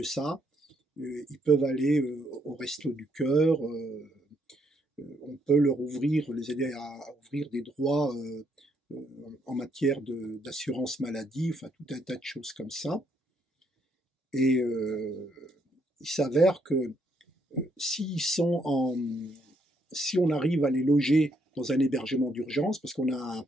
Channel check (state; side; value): normal; both; correlation 0.73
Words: ça, ils peuvent aller au Resto du Cœur, on peut les aider à ouvrir des droits en matière d'assurance maladie, enfin tout un tas de choses comme ça. Et il s'avère que si on arrive à les loger dans un hébergement d'urgence, parce qu'on a un